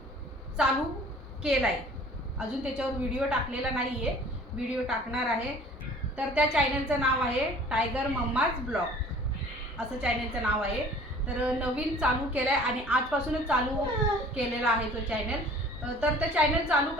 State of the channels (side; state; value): both; normal; correlation 0.49